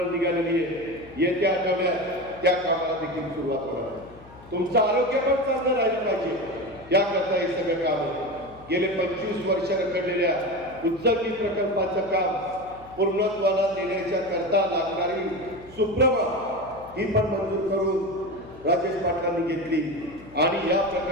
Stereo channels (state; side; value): noise; left; hum, 21 dB below the sound